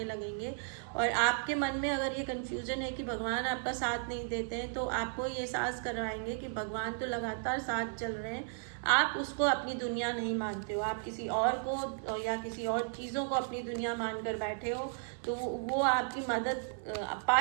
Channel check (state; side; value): silent; left; 55 dB below the other